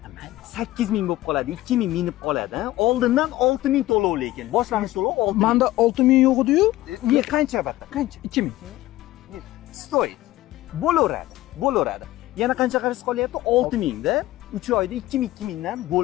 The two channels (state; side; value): quieter; right; 16.4 dB